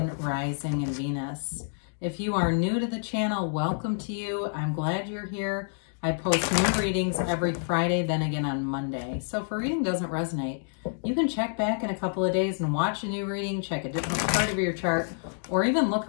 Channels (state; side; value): silent; right; digital silence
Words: Rising, and Venus. If you are new to the channel, welcome to you. I'm glad you're here. I post new readings every Friday, then again on Monday. So if a reading doesn't resonate, you can check back in a couple of days and watch a new reading, check a different part of your chart, or even look